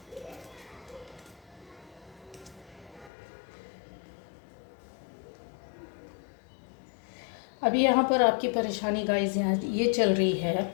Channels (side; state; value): right; drops out; at 3.1 s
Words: अभी यहाँ पर आपकी परेशानी गाइस यहाँ ये चल रही है